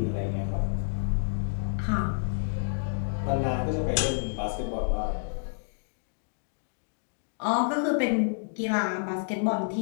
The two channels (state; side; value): silent; right; digital silence